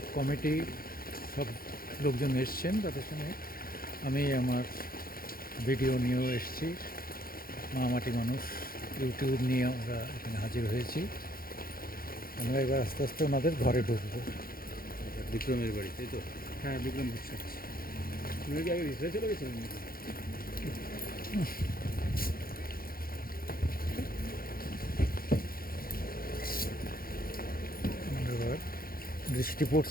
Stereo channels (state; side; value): late; right; 0.42 ms